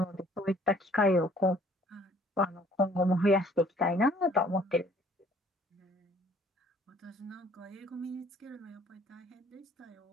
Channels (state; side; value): normal; both; correlation 0.57